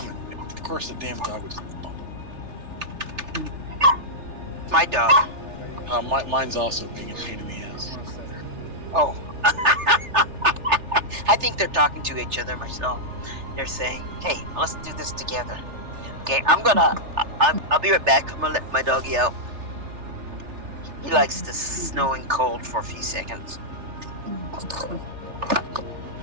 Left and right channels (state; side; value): late; left; 3.3 ms